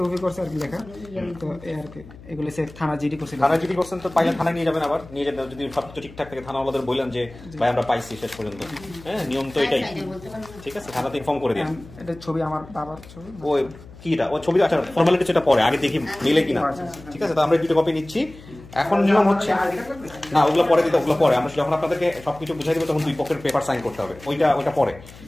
করছে আর কি লেখা, তো এই আর কি এগুলো সে থানা জিডি করছিল। থানা জিডি করছেন তো পাইলে থানায় নিয়ে যাবেন, আবার নিয়ে যাবেন যদি সবকিছু ঠিকঠাক থাকে থানাওয়ালাদের বললেন যে ভাই আমরা পাইছি শেষ পর্যন্ত, হ্যাঁ নিয়ম তো এটাই, ঠিক আছে থানাতে ইনফর্ম করে দিন। এটা ছবি আমার বাবার ছবি, ওই কিটা ও ছবি, আচ্ছা ফর্মালিটি সেটা পরে, আগে দেখি মিলে কিনা, ঠিক আছে তো আমরা দুটো কপি নিচ্ছি। এখন নিয়ম হচ্ছে না ওগুলো পরে দিতে, ওগুলো পরে আমরা যখন আপনাদেরকে সবকিছু বুঝাই দেবো তখন 2 পক্ষের পেপার সাইন করতে হবে, ওইটা পরে।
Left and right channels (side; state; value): left; noise; hum, 19 dB below the sound